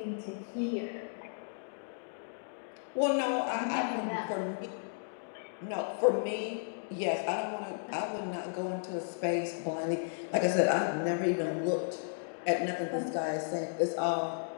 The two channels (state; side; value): silent; right; digital silence